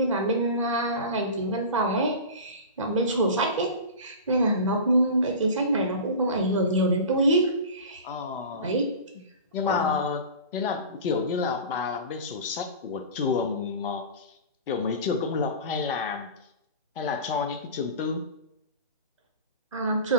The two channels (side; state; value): both; inverted; correlation -0.32